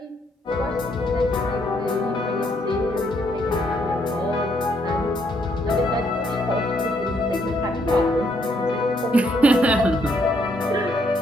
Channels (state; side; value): normal; both; correlation 0.72